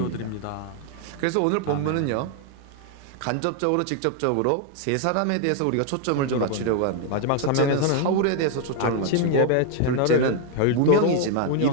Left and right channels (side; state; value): both; different; correlation 0.00